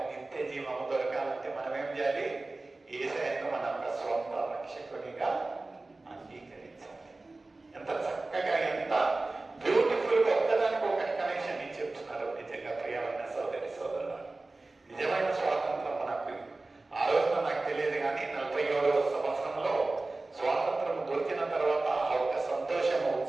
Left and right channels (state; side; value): quieter; left; 3.2 dB